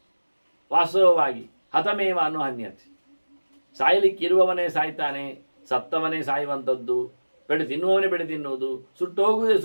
ವಾಸ್ತವವಾಗಿ ಹತಮೇವ ಅನ್ನೋ ಹನ್ಯತೆ. ಸಾಯಲಿಕ್ಕಿರುವವನೇ ಸಾಯ್ತಾನೆ, ಸತ್ತವನೇ ಸಾಯುವಂಥದ್ದು, ಬೆಳೆ ತಿನ್ನುವವನೇ ಬೆಳೆ ತಿನ್ನುವುದು, ಸುಟ್ಟೋಗುವುದೇ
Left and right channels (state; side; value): inverted; both; correlation -1.00